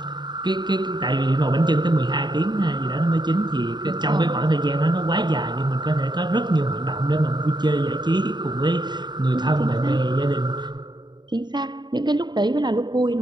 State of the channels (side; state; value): left; late; 0.21 ms